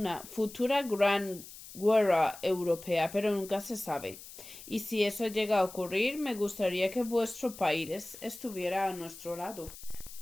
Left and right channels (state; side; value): noise; left; hiss, 16 dB below the sound